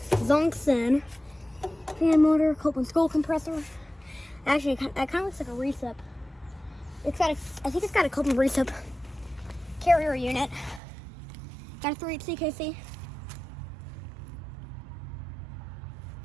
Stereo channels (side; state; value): left; drops out; at 10.8 s